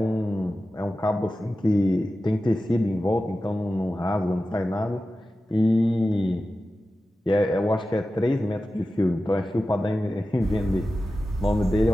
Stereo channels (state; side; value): normal; both; correlation 0.94